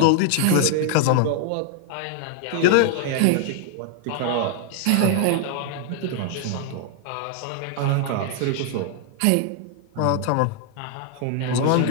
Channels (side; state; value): both; different; correlation 0.00